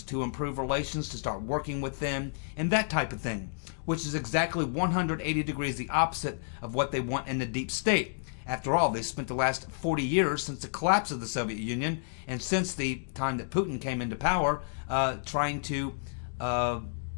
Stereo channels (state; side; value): silent; right; digital silence